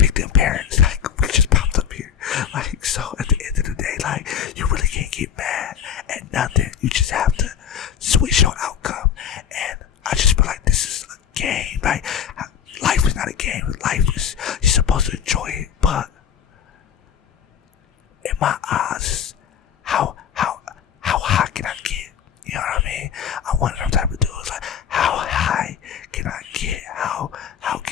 them parents. Like, we just popped up here. Like, so at the end of the day, like, you really can't get mad at nothing. You just have to switch your outcome. And I just feel like this is a game. Like, life is not a game. Life is, you're supposed to enjoy it. But in my eyes, how high can I get? You know what I mean? I'm one of them type of dudes. Like, how high can I get? How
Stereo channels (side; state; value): right; quieter; 8.4 dB